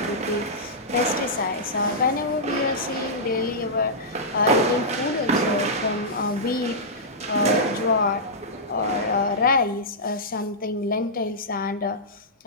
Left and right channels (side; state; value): both; normal; correlation -0.13